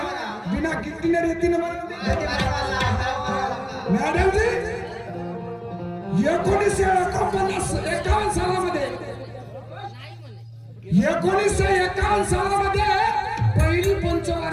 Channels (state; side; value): identical; both; correlation 1.00